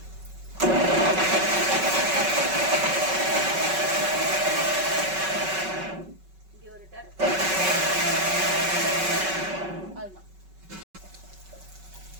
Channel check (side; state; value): left; late; 5.3 ms